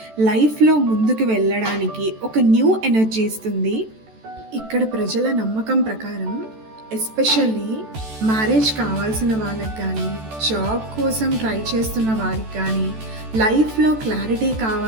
లైఫ్లో ముందుకు వెళ్ళడానికి ఒక న్యూ ఎనర్జీ ఇస్తుంది. ఇక్కడ ప్రజల నమ్మకం ప్రకారం ఎస్పెషల్లీ మ్యారేజ్ కావాల్సిన వాళ్ళకి కానీ, జాబ్ కోసం ట్రై చేస్తున్న వారికి కానీ, లైఫ్లో క్లారిటీ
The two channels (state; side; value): late; left; 14 ms